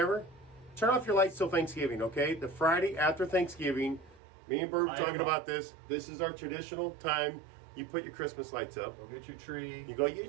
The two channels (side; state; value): left; drops out; at 4.2 s